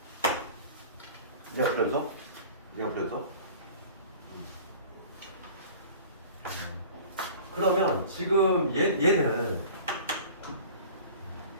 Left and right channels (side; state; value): both; inverted; correlation -0.42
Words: 얘가 불연속? 얘가 불연속? 그러면 지금 얘는